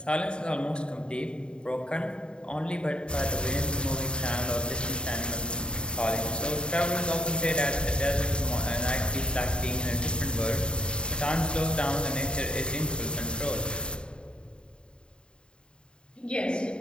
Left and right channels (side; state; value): right; late; 0.052 ms